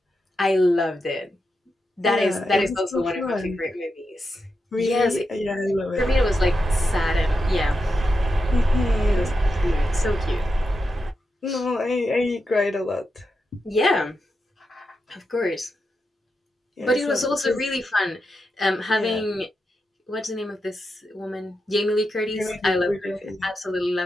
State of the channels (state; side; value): normal; both; correlation 0.87